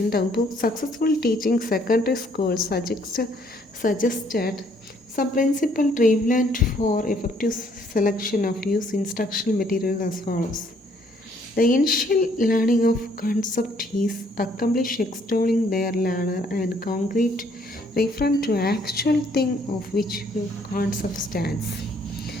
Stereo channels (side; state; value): both; normal; correlation 0.65